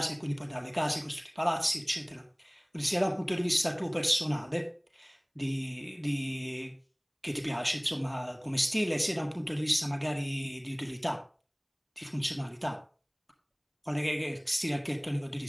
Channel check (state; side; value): identical; both; correlation 1.00